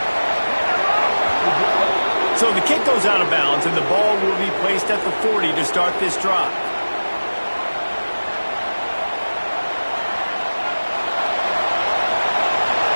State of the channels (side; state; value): both; inverted; correlation -1.00